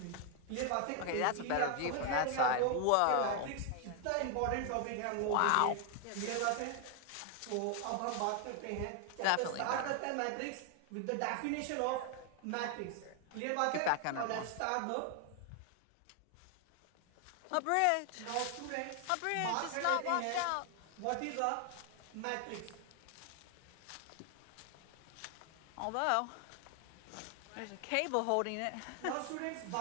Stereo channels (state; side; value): different; both; correlation 0.00